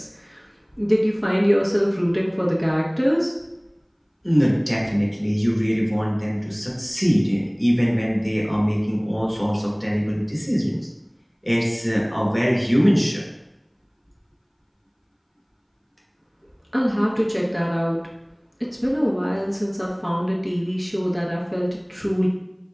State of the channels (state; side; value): identical; both; correlation 1.00